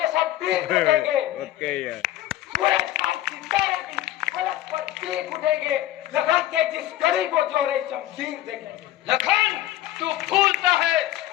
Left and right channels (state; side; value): quieter; right; 13.9 dB